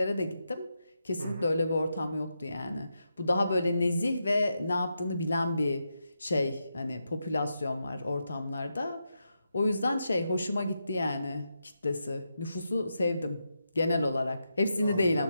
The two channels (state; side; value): inverted; both; correlation -0.85